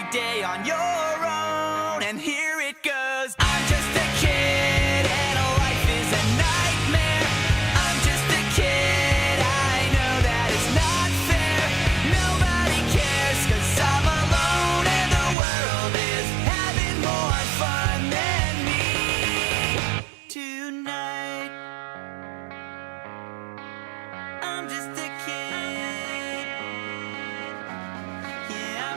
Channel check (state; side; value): drops out; left; at 15.4 s